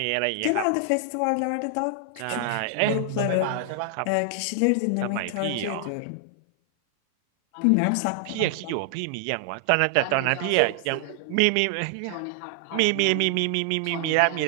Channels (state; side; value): different; both; correlation 0.00